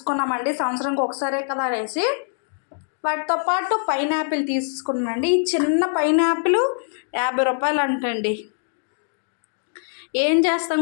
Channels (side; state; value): right; silent; digital silence